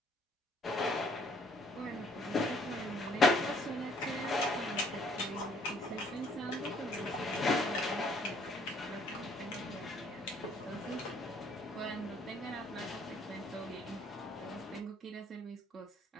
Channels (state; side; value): normal; both; correlation 0.63